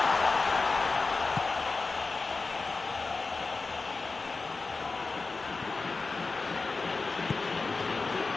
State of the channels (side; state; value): right; quieter; 3.9 dB